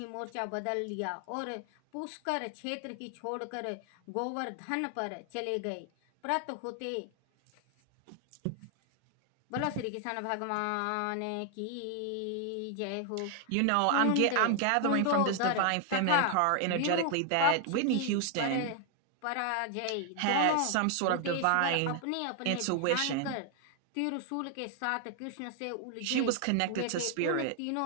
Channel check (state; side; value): different; both; correlation 0.00